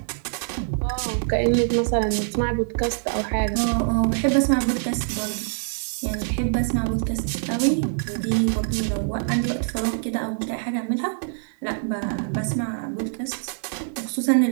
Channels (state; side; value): silent; left; 62 dB below the other